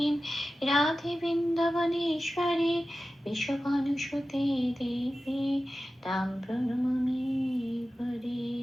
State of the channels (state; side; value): normal; both; correlation 0.94